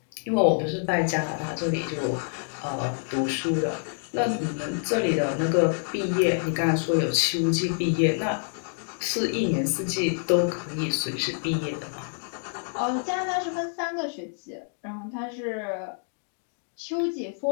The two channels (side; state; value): right; silent; 60 dB below the other